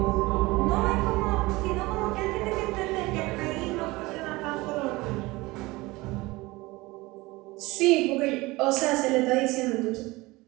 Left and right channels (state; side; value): quieter; left; 21.4 dB